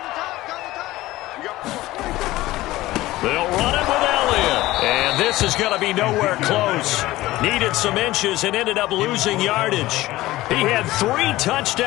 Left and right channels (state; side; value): quieter; right; 17.4 dB